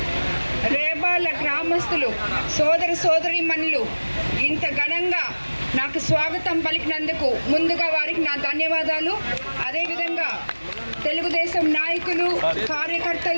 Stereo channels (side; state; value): both; inverted; correlation -1.00